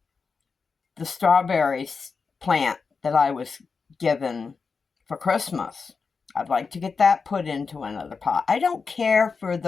the strawberries plant that I was given for Christmas. I'd like to get that put into another pot. I don't care for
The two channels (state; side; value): quieter; right; 5.0 dB